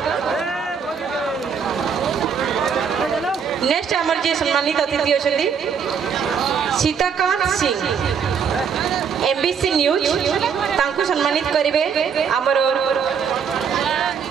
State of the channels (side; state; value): left; quieter; 6.8 dB